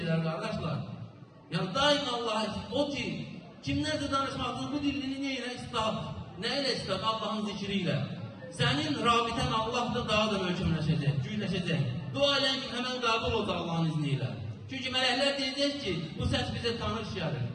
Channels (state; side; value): identical; both; correlation 1.00